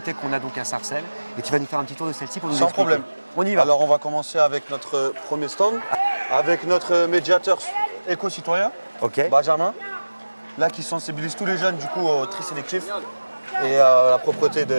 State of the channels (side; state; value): both; inverted; correlation -1.00